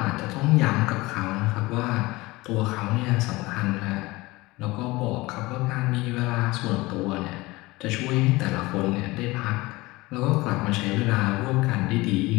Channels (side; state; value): right; quieter; 21.2 dB